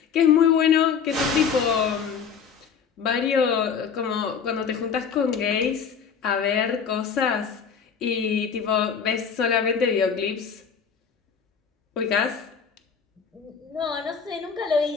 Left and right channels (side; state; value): right; quieter; 6.6 dB